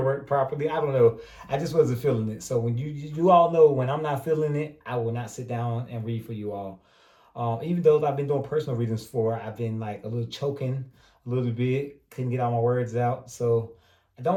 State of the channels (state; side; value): identical; both; correlation 1.00